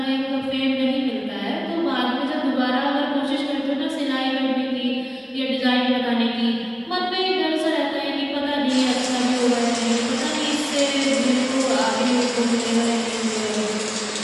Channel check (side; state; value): both; identical; correlation 1.00